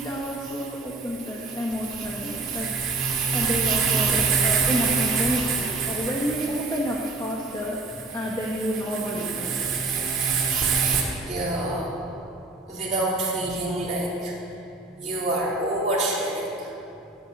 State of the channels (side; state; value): left; quieter; 3.2 dB